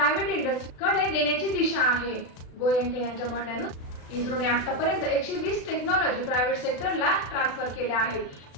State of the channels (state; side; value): late; right; 36 ms